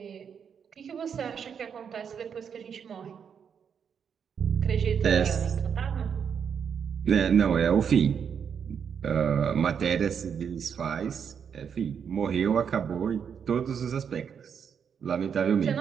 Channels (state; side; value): quieter; left; 7.3 dB